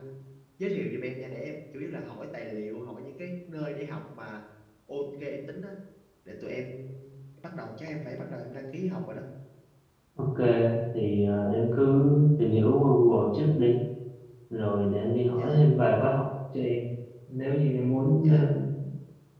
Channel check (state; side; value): identical; both; correlation 1.00